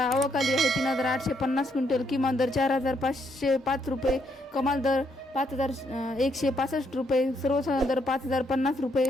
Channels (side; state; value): both; normal; correlation 0.74